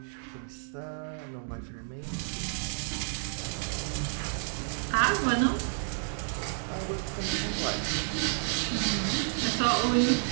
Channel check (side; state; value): left; silent; digital silence